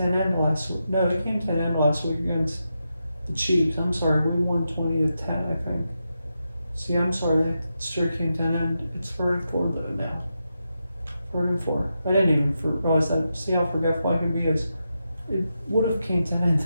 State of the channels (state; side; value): inverted; both; correlation -0.87